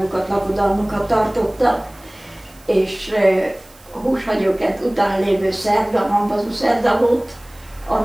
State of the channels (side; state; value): right; noise; hiss, 27 dB below the sound